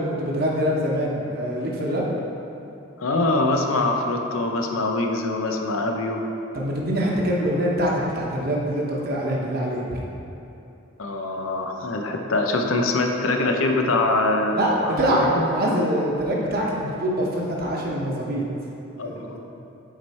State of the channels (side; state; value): both; normal; correlation 0.24